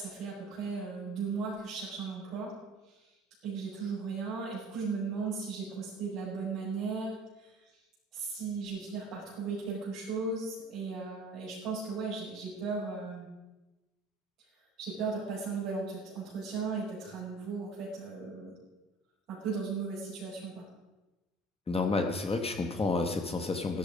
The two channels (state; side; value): normal; both; correlation 0.48